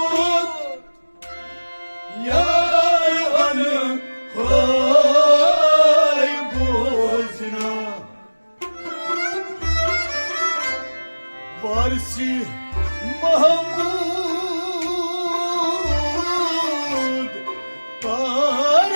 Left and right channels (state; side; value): inverted; both; correlation -1.00